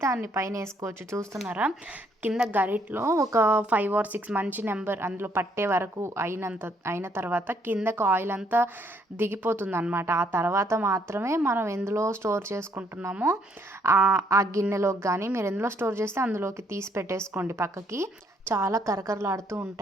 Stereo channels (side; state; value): both; normal; correlation 0.68